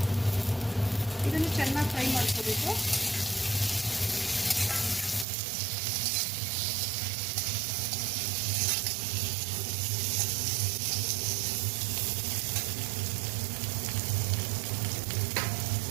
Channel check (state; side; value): drops out; left; at 5.2 s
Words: ಇದನ್ನು ಚೆನ್ನಾಗಿ ಫ್ರೈ ಮಾಡ್ಕೋಬೇಕು.